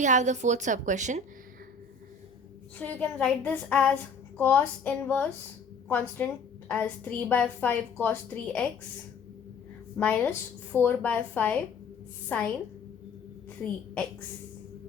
have the fourth sub question. So you can write this as cos inverse constant as 3 by 5 cos 3x minus 4 by 5 sine 3x.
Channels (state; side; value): quieter; right; 4.5 dB